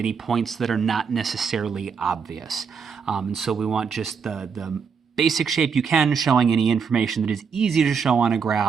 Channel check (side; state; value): left; quieter; 6.1 dB